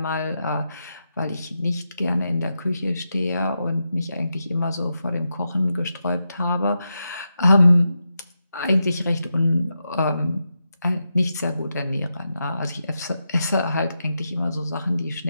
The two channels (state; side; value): inverted; both; correlation -0.87